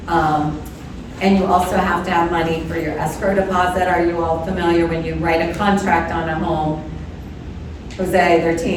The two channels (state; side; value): identical; both; correlation 1.00